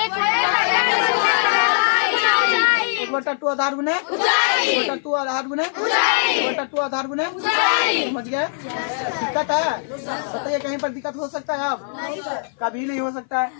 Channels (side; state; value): right; silent; 56 dB below the other